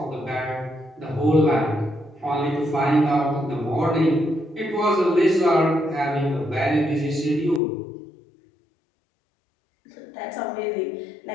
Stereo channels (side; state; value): right; drops out; at 7.6 s